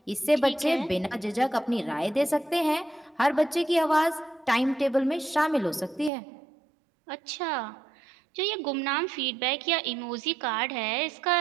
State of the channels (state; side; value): drops out; left; at 6.1 s